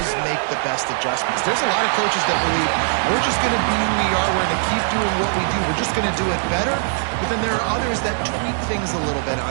make the best adjustments. There's a lot of coaches that believe we're just going to be who we are. We're going to keep doing what we do. We're just going to do it better. But then there are others that tweak things a little bit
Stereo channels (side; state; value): left; silent; 65 dB below the other